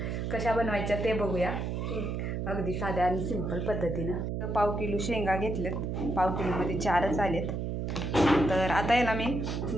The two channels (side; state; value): right; noise; hum, 2 dB below the sound